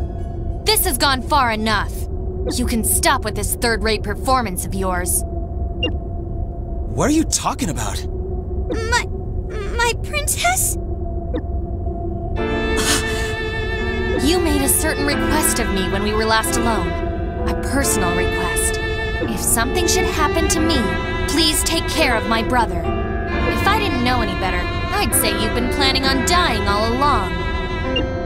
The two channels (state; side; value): identical; both; correlation 1.00